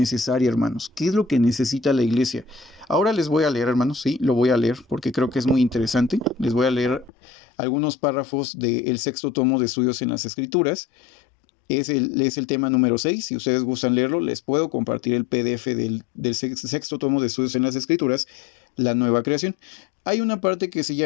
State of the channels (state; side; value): drops out; right; at 7.1 s